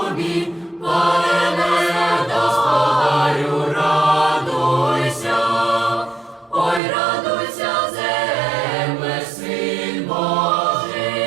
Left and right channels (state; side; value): drops out; left; at 6.8 s